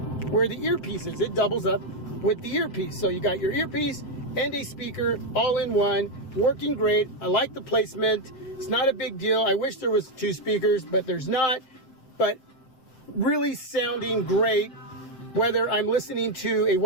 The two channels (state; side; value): late; right; 7.7 ms